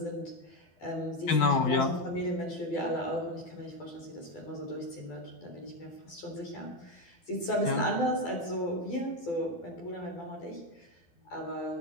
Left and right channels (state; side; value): late; right; 12 ms